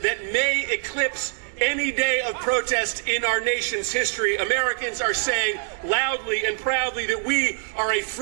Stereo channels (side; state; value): left; silent; 62 dB below the other